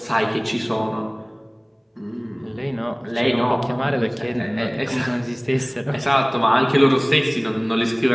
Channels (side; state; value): both; identical; correlation 1.00